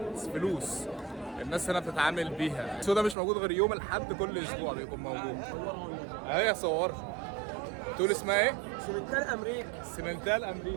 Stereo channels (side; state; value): left; drops out; at 3.2 s